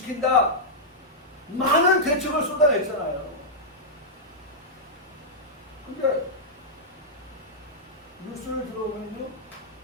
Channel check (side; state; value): both; normal; correlation -0.09